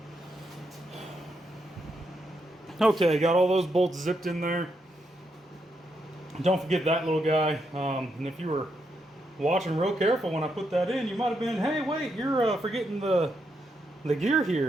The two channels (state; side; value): normal; both; correlation 0.81